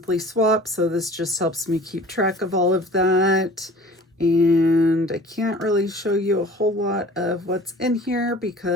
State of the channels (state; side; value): normal; both; correlation 0.45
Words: swaps, so this just helps me keep track of all of that. And I can't really show you a whole lot of what's in here